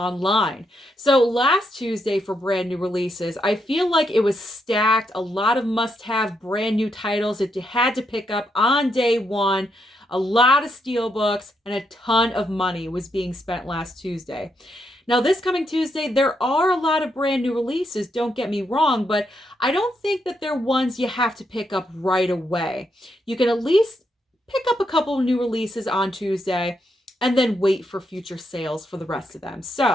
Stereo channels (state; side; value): normal; both; correlation 0.80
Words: So last Tuesday for brand new releases, I feel like it was stacked. A lot of must-have brand new titles that you had to pick up on day one. A lot of steelbooks and a ton of money was being spent last Tuesday. Now, this coming Tuesday, there are a lot of brand new releases, don't get me wrong, but I don't think that they're ones you have to pick up right away. You can at least pick up a couple of new releases on Tuesday and then wait for future sales for the rest of them.